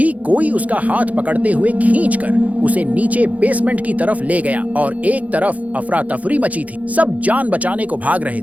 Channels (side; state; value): left; late; 0.072 ms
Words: कोई उसका हाथ पकड़ते हुए खींचकर उसे नीचे बेसमेंट की तरफ ले गया और एक तरफ अफरा तफरी मची थी। सब जान बचाने को भाग रहे